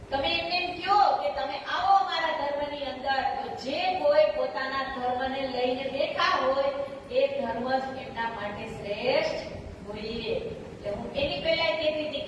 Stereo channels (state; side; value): identical; both; correlation 1.00